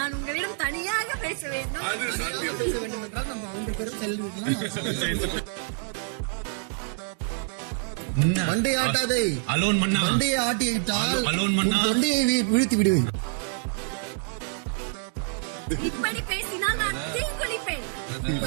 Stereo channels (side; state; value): left; silent; 60 dB below the other